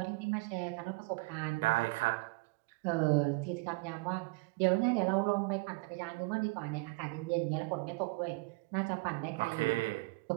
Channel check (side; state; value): left; quieter; 26.7 dB